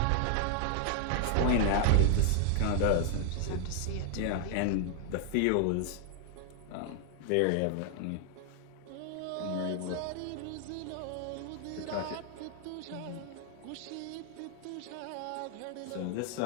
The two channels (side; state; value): both; different; correlation 0.00